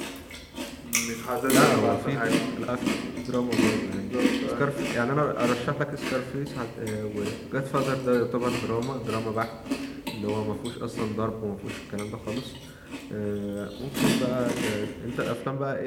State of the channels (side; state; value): both; identical; correlation 1.00